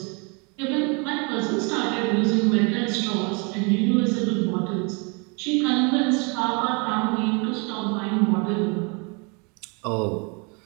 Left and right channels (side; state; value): left; quieter; 32.6 dB